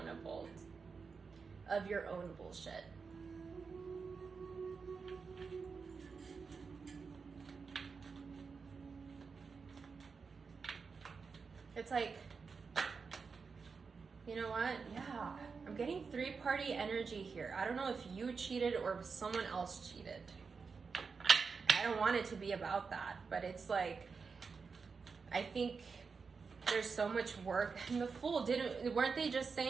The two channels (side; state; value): left; quieter; 5.1 dB